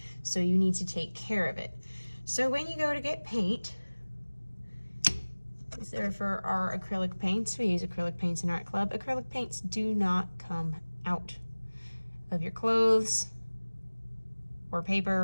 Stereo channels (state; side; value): inverted; both; correlation -1.00